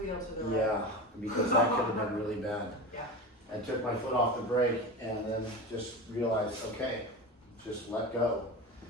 to the right. Yeah, because that could have been really bad. Yeah. I took my foot off the brake and then just realized, okay, just let go.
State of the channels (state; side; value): normal; both; correlation 0.27